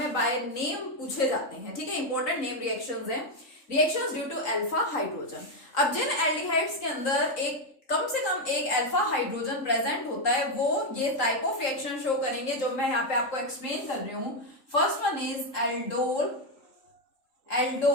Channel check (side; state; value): right; late; 3.8 ms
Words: बाय नेम पूछे जाते हैं, ठीक है, इंपॉर्टेंट नेम रिएक्शंस हैं। Reactions due to alpha hydrogen. अब जिन एल्डिहाइड्स के अंदर एक कम से कम एक अल्फा हाइड्रोजन प्रेजेंट होता है, वो ये टाइप ऑफ रिएक्शन शो करेंगे जो मैं यहाँ पे आपको एक्सप्लेन कर रही हूँ। First one is